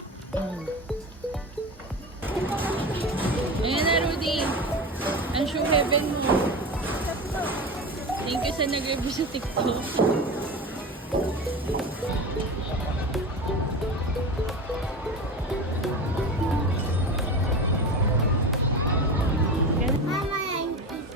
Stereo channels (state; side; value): normal; both; correlation 0.27